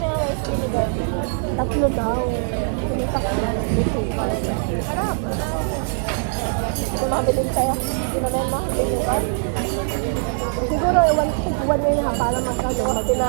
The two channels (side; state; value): left; silent; 64 dB below the other